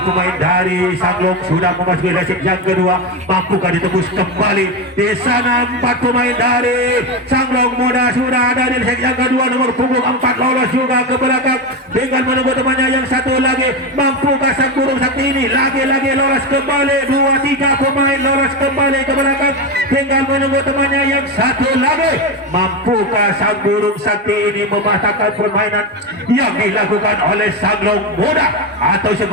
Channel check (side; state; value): both; normal; correlation 0.15